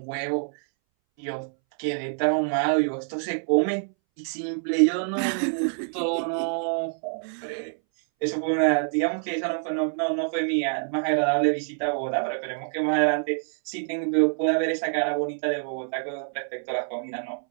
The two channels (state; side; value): silent; left; 61 dB below the other